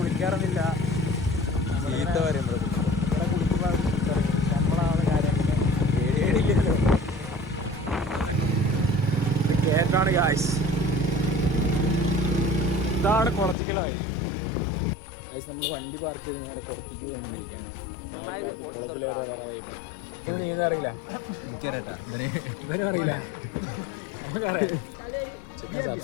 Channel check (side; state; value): right; drops out; at 13.6 s